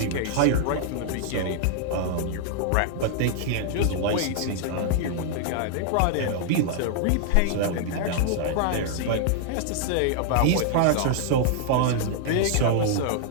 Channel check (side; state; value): both; different; correlation -0.01